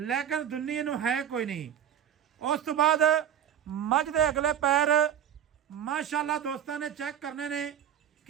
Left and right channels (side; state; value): left; quieter; 9.7 dB